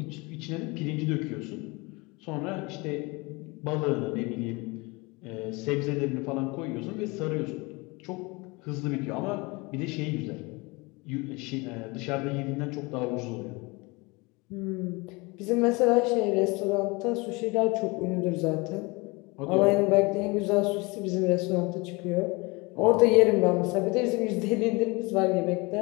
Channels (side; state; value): right; quieter; 25.9 dB